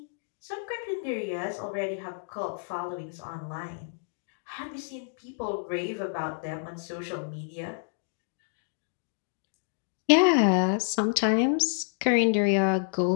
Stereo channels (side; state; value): right; silent; digital silence